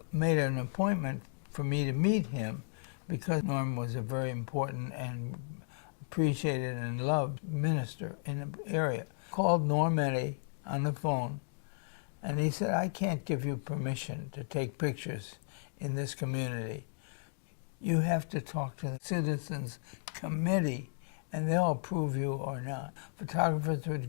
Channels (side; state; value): right; silent; digital silence